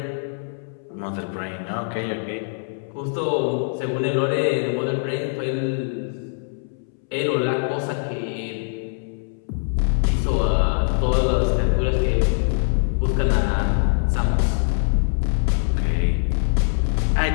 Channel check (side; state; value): right; silent; 64 dB below the other